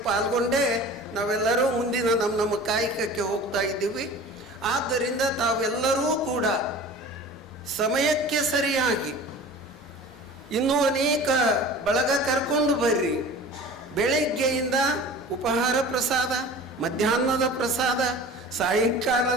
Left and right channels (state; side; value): normal; both; correlation 0.40